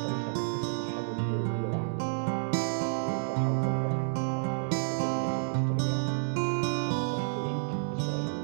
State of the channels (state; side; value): silent; left; digital silence